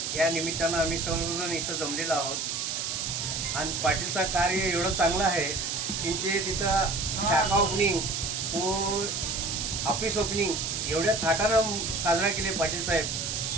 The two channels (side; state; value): right; noise; hiss, 2 dB below the sound